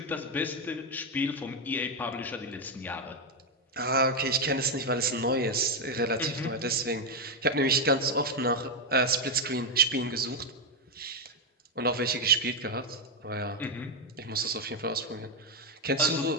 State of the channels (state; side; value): normal; both; correlation 0.05